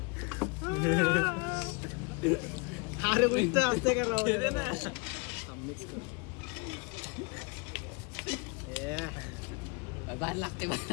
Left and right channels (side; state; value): right; quieter; 29.7 dB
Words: अरे उलट असते का राव. मिक्स कर बाहेर लागते.